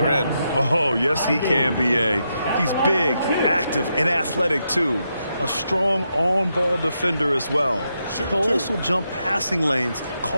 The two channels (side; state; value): both; inverted; correlation -0.83